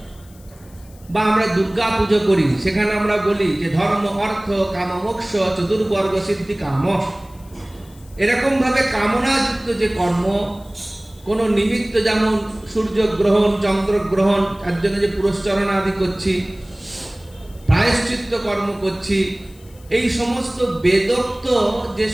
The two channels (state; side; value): noise; left; hiss, 27 dB below the sound